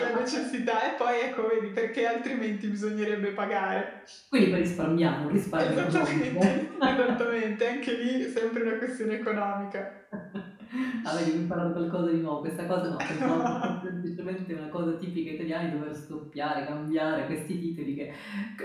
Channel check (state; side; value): identical; both; correlation 1.00